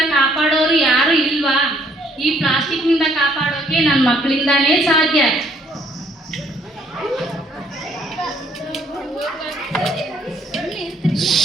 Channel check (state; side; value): normal; both; correlation 0.65